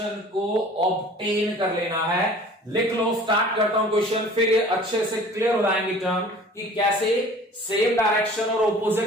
को ऑब्टेन कर लेना है। लिख लो, स्टार्ट करता हूं क्वेश्चन, फिर ये अच्छे से क्लियर हो जाएंगे टर्म कि कैसे सेम डायरेक्शन और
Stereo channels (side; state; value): both; normal; correlation 0.47